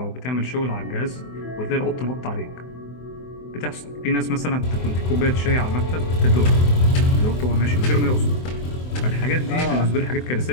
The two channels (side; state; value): right; late; 24 ms